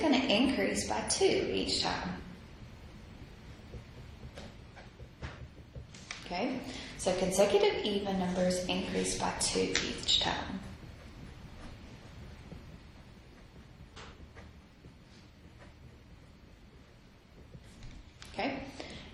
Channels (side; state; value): both; identical; correlation 1.00